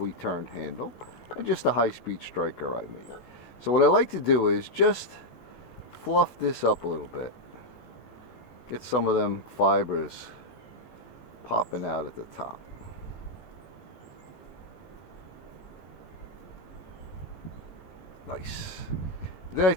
turned handle. And just a high-speed striker I made. So what I like to do is just fluff this up a little bit. Get some of them fibers popping out at the top. Nice. Then I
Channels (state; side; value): late; right; 16 ms